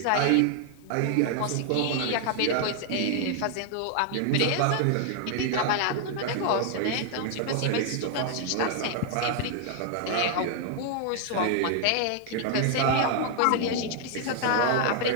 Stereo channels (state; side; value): different; both; correlation 0.00